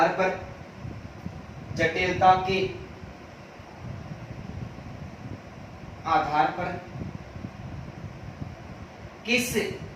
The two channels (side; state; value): both; identical; correlation 1.00